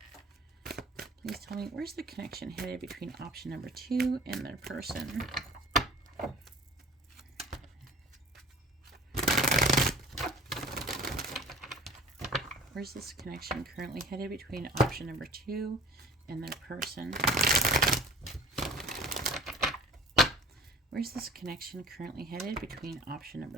Please tell me, where's the connection headed between option number 2 and their person? Where's this connection currently headed between option number 2 and their person? Where's this connection currently headed between option number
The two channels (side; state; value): both; normal; correlation 0.44